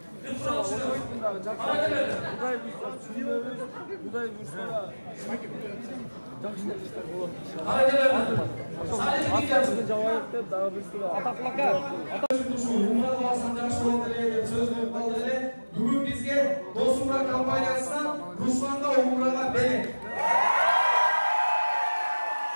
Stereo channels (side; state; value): both; inverted; correlation -1.00